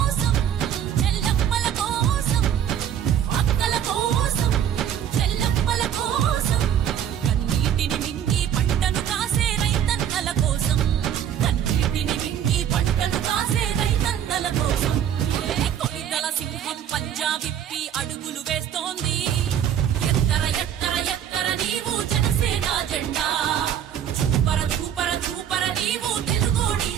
చెల్లమ్మల కోసం అక్కల కోసం చెల్లమ్మల కోసం కన్నీటిని మింగి పంటను కాసే రైతన్నల కోసం కన్నీటిని మింగి పంటను కాసే రైతన్నల కోసం కొనిదల సింహం పంజా విప్పి అడుగులు వేస్తోంది ఎత్తర ఎత్తర ఎత్తర నీవు జనసేన జెండా చూపర చూపర చూపర నీవు తెలుగోడి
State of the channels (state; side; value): quieter; left; 9.7 dB